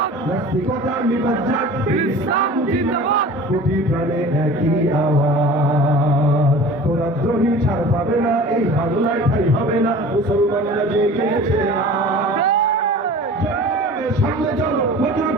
নাস্তিকতা নিপাত যাক, ইসলাম জিন্দাবাদ, কোটি প্রাণে একই আওয়াজ। খোদাদ্রোহী ছাড় পাবে না, এই বাংলায় ঠাই হবে না, মুসলমানরা জেগেছে সামনে চলো, বজ্র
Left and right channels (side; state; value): both; normal; correlation 0.41